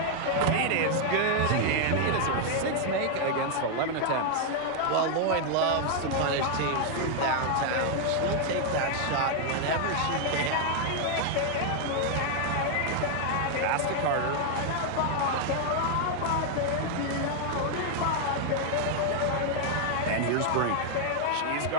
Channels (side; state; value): both; different; correlation 0.00